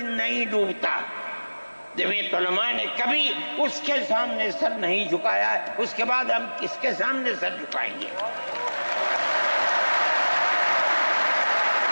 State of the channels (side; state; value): both; inverted; correlation -1.00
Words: نہیں ڈوبتا، جمعیت علماء نے کبھی اس کے سامنے سر نہیں جھکایا ہے، اس کے بعد ہم کس کے سامنے سر جھکائیں گے؟